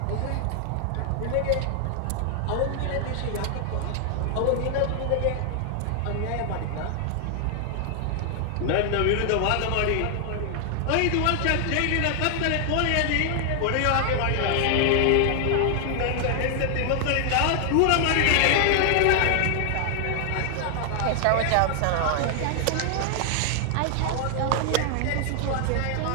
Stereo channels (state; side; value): different; both; correlation 0.00